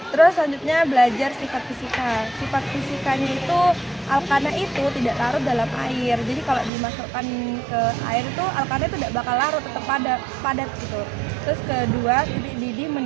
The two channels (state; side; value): drops out; left; at 6.7 s